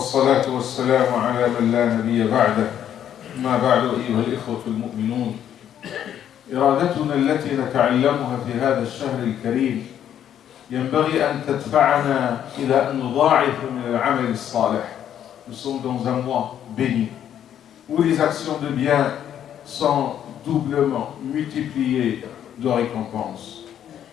والسلام على من لا نبي بعده. ما بعد أيها الإخوة المؤمنون، إرادتنا التي نتعلمها في هذا الشهر الكريم ينبغي أن تدفعنا إلى أن نضاعف من العمل الصالح. Nous sommes dans un mois béni, où les actions de bien sont doublement multipliées de récompenses.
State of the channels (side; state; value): right; quieter; 10.0 dB